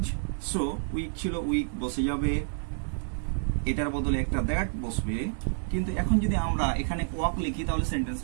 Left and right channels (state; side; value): silent; left; 59 dB below the other